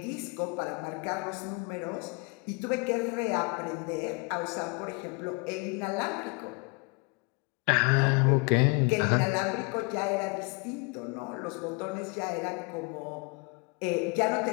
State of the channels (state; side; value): quieter; right; 31.2 dB